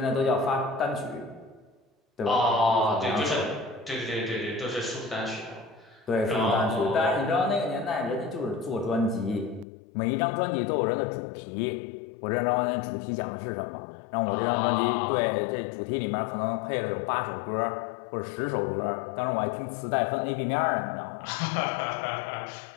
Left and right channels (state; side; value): drops out; right; at 9.7 s